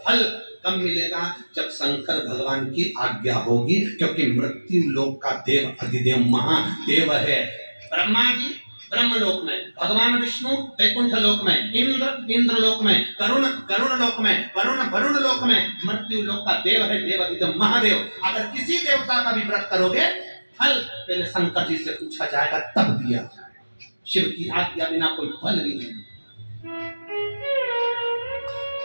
फल कब मिलेगा? जब शंकर भगवान की आज्ञा होगी, क्योंकि मृत्यु लोक का देव अधिदेव महादेव है। ब्रह्मा जी ब्रह्मलोक में, भगवान विष्णु वैकुंठ लोक में, इंद्र लोक में, गरुण लोक में, वरुण लोक में, मृत्यु लोक का देव है देव अधिदेव महादेव। अगर किसी देवता का भी व्रत करोगे, फल पहले शंकर जी से पूछा जाएगा तब दिया जाएगा। शिव की आज्ञा बिना कोई फल भी नहीं।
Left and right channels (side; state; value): both; inverted; correlation -1.00